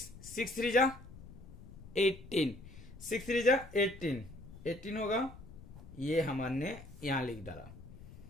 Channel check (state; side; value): noise; left; rumble, 16 dB below the sound